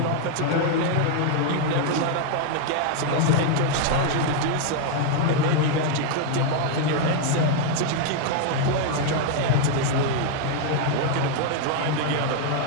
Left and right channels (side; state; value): both; different; correlation 0.00